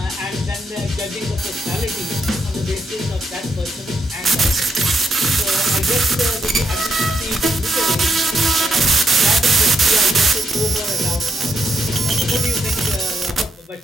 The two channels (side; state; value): both; normal; correlation 0.78